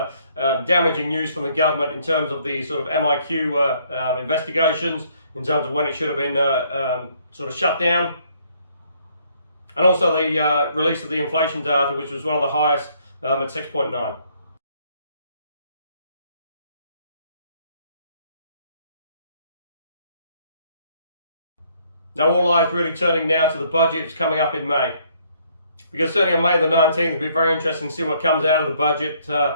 damaging news from the government in terms of the sort of MIQ investigations, in terms of when it should have been sort of shut down. And also the release of the inflation data, which was one of the highest at 6.9. Now all eyes really turning now to the budget coming up in May. Because certainly on May the 19th, it'll be very interesting to see what comes out of the budget.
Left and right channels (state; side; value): inverted; both; correlation -0.66